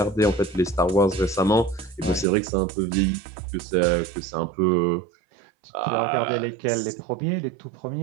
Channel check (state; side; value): drops out; left; at 2.2 s